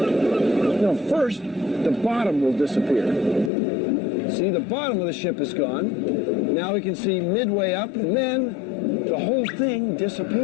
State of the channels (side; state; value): right; drops out; at 3.5 s